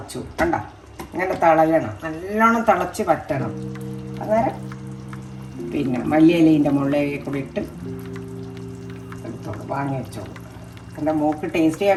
കണ്ട, ഇങ്ങനെ തിളയണം, നല്ലോണം തിളച്ച് പറ്റണം. അന്നേരം പിന്നെ മല്ലിയിലേൻ്റെ മുകളിലേക്ക് കൂടി ഇട്ട് എടുത്തോളൂ, വാങ്ങി വെച്ചോളൂ. എൻ്റെ മോക്ക് ടേസ്റ്റ്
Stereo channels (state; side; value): identical; both; correlation 1.00